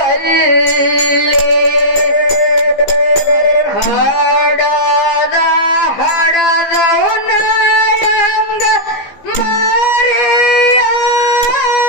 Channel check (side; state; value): right; late; 15 ms